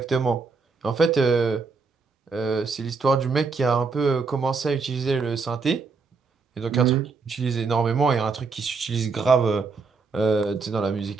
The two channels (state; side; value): quieter; left; 4.6 dB